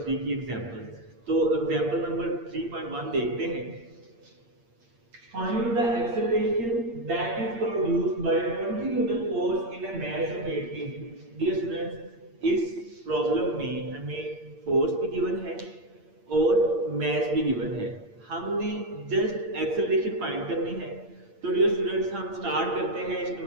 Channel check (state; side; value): late; left; 8.7 ms